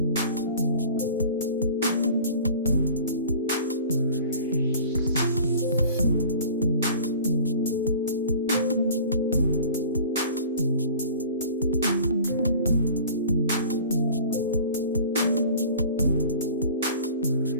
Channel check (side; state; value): both; inverted; correlation -0.43